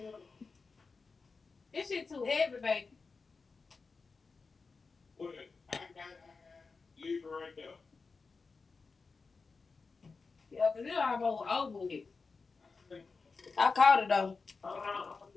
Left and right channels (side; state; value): right; quieter; 4.4 dB